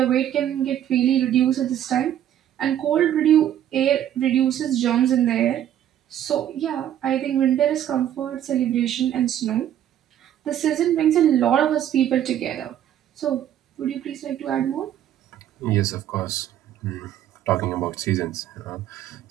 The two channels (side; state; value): left; quieter; 11.0 dB